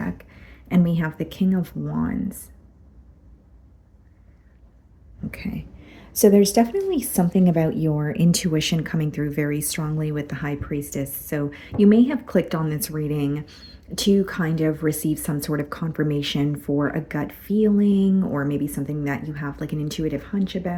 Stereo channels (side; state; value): both; identical; correlation 1.00